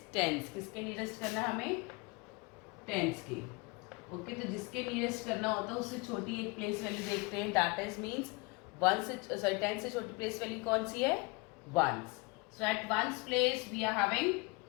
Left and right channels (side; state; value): right; quieter; 26.8 dB